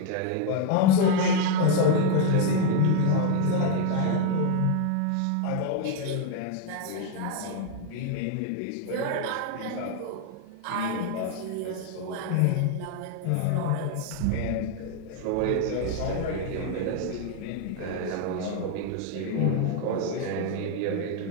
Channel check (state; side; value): different; both; correlation 0.01